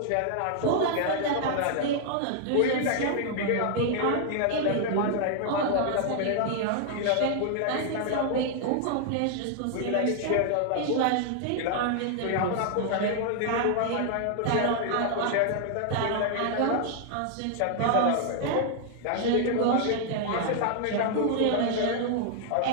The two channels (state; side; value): different; both; correlation 0.00